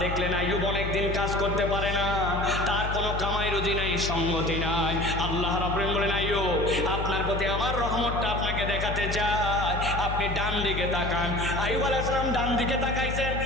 দেখলেন আইয়ুব অনেকদিন কাজ করতে পারে না, তার কোনো কামাই রুজি নাই, সঙ্গতি নাই। আল্লাহ রাব্বুল আলামিন বলেন, আইয়ুব, আপনার প্রতি আমার রহমতটা আপনাকে দেখাতে চাই, আপনি ডান দিকে তাকান। আইয়ুব আলাইহিস সালাম ডান দিকে তাকাইছেন,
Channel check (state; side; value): noise; left; hum, 4 dB below the sound